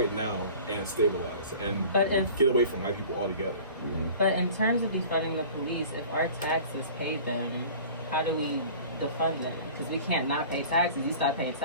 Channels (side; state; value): both; inverted; correlation -0.43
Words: now and stabilize and get away from white people altogether. But in terms of defunding the police, if our taxes pay them, how do we defund them because we can't not pay taxes. You start paying